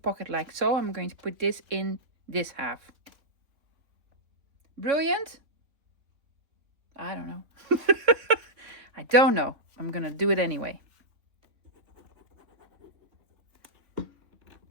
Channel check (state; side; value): late; left; 3.4 ms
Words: like so. I'm going to put this in this half. Brilliant? I don't know. I don't know. I'm going to do it anyway.